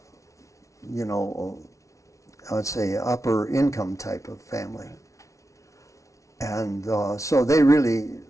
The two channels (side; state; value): right; late; 0.15 ms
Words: I'd say upper income type of family, and so they really